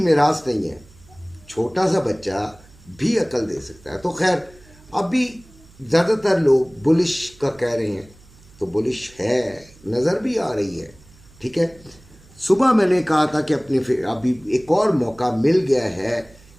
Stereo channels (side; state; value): right; noise; hum, 25 dB below the sound